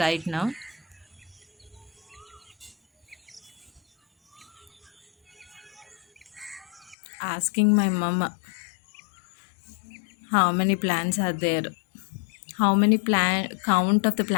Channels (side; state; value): right; drops out; at 7.0 s